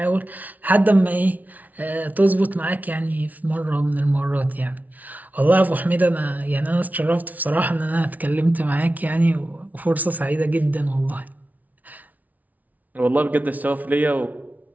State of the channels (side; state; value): left; late; 0.075 ms